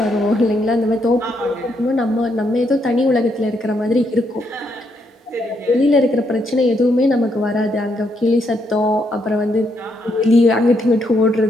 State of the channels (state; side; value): normal; both; correlation 0.76